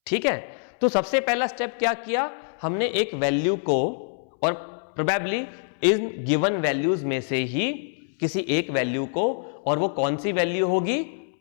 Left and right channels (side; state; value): right; silent; 62 dB below the other